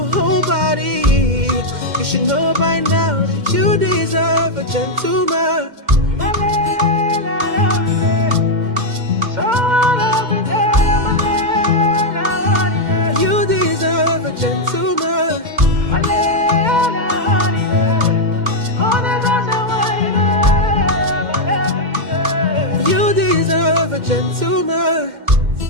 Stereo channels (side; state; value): left; late; 2.1 ms